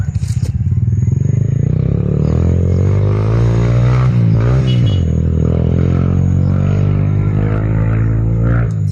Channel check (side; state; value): both; identical; correlation 1.00